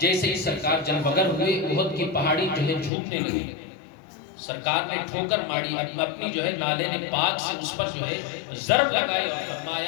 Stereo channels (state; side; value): drops out; right; at 2.9 s